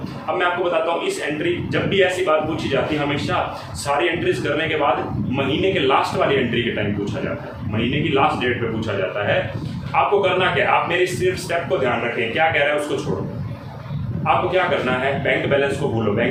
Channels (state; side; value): identical; both; correlation 1.00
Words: अब मैं आपको बताता हूँ, इस एंट्री जब भी ऐसी बात पूछी जाती है हमेशा सारी एंट्रीज करने के बाद महीने के लास्ट वाली एंट्री के टाइम पूछा जाता है, महीने की लास्ट डेट पे पूछा जाता है। आपको करना क्या है, आप मेरी सिर्फ स्टेप को ध्यान रखें, क्या कह रहा है उसको छोड़ो। आपको क्या करना है, बैंक बैलेंस को भूलो,